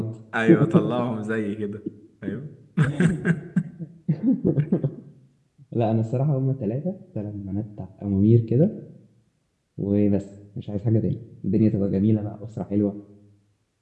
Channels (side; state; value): both; identical; correlation 1.00